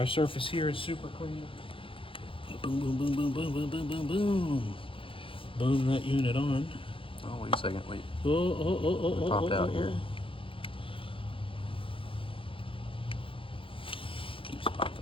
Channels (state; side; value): late; right; 0.26 ms